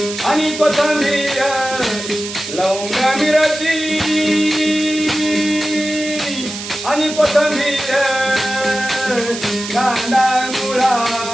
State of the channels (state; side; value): noise; right; hiss, 9 dB below the sound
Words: आणि कोथिंबीर लवंग मिरची आणि कोथिंबीर कांदा मुळा